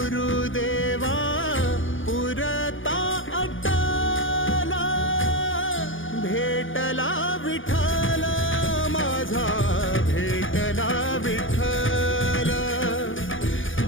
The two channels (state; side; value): late; right; 0.57 ms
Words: पुरता अटला, भेटला विठ्ठल माझा, भेटला विठ्ठल,